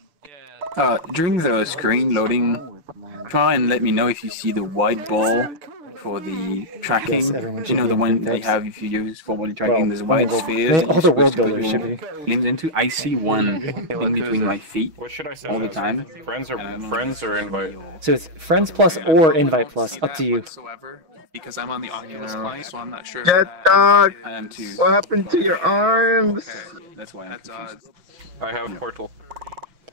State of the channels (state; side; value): late; left; 6.3 ms